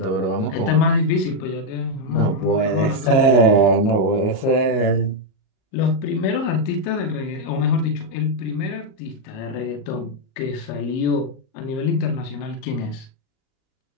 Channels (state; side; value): late; right; 37 ms